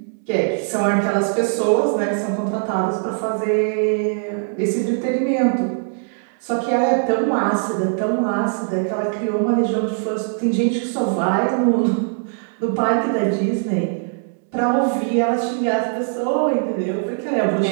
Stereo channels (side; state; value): left; silent; 65 dB below the other